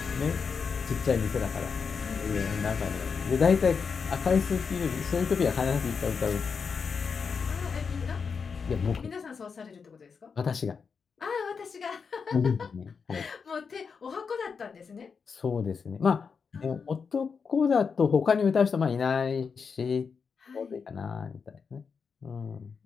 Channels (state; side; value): quieter; right; 5.7 dB